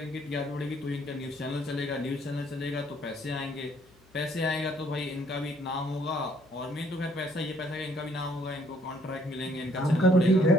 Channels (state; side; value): noise; left; hum, 29 dB below the sound